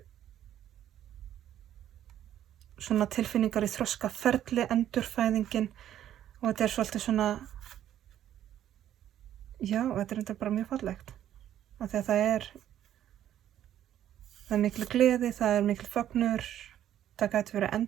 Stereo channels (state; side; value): quieter; left; 11.3 dB